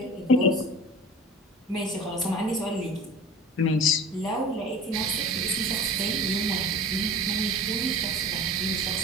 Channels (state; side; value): normal; both; correlation 0.38